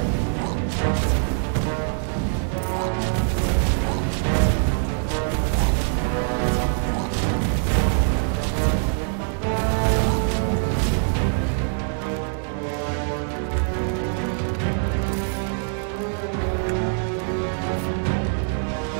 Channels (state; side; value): silent; left; 63 dB below the other